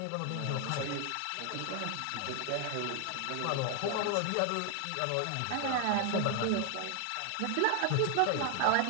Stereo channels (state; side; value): different; both; correlation 0.00